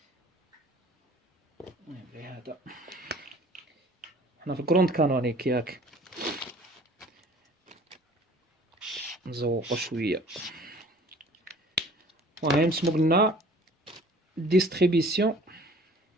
المهم هذا حنا في الكروند كانونيك ياك، نزوقو شويه. المهم سمو قلنا ديستريبيسيون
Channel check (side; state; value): both; normal; correlation 0.50